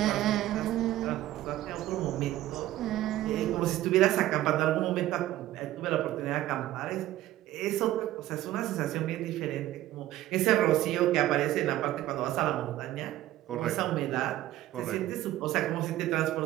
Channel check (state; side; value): quieter; left; 14.7 dB